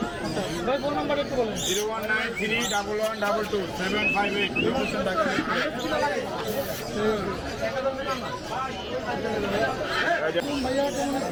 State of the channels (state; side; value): identical; both; correlation 1.00